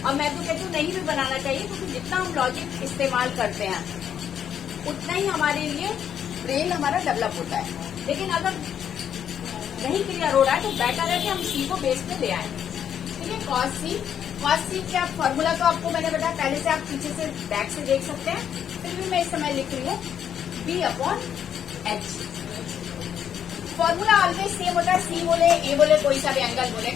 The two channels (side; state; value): right; quieter; 9.0 dB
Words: और मैं तो कहती हूँ नहीं भी बनाना चाहिए, क्योंकि जितना हम लॉजिक इस्तेमाल करते हैं उतना ही हमारे लिए ब्रेन हमारा डेवलप होता है। लेकिन अगर नहीं क्लियर हो रहा है तो बेटर है कि हम सी को बेस पे ले आए, ठीक है। cos c क्या फॉर्मूला तो आपको मैंने बताया पहले से, आप पीछे से बैक से देख सकते हैं, फिर भी मैं इस समय लिख रही हूँ b upon h। Formula always same होता है, सी बोले ए बोले, कोई सा भी एंगल बोले,